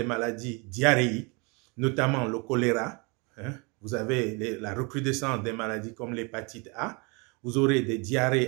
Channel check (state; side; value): quieter; left; 30.2 dB